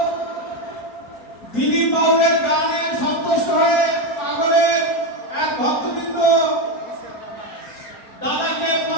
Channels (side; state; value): right; late; 4.3 ms